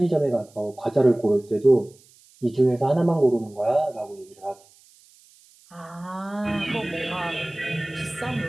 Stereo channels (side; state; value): right; noise; hiss, 28 dB below the sound